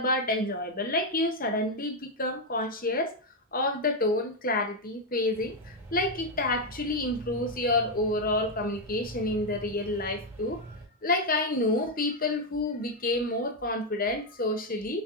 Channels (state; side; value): normal; both; correlation 0.03